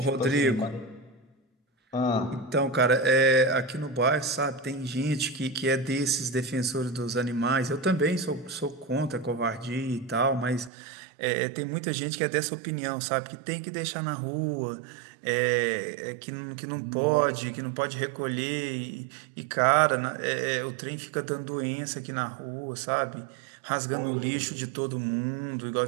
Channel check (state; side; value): drops out; left; at 10.7 s